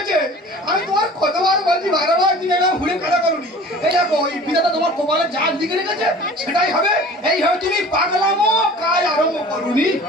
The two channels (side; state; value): both; normal; correlation 0.44